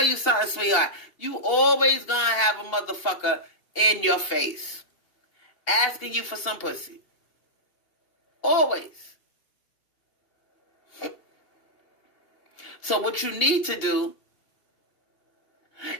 you something, sweetheart. You always going to have a motherfucker in your face asking you for some pussy. Always. So what you need to do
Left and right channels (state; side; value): late; right; 2.8 ms